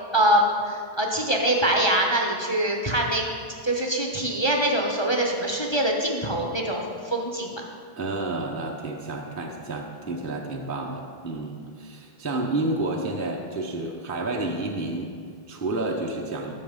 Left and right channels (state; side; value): late; right; 1.3 ms